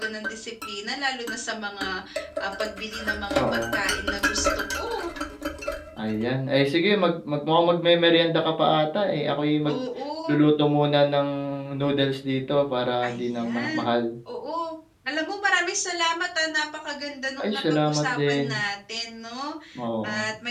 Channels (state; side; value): identical; both; correlation 1.00